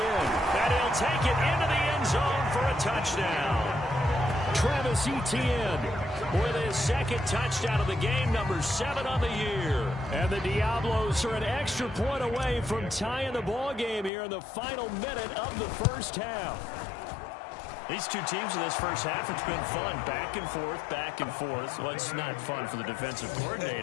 he'll take it into the end zone for a touchdown. Travis Etienne with his second touchdown of the game, number 7 on the year. And the Diablos are an extra point away from tying the ball game here in the final minute of the first half. These two teams in this first half, it's been fun. Back and forth, back and forth. Well, it's not fun for the defensive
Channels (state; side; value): drops out; right; at 14.1 s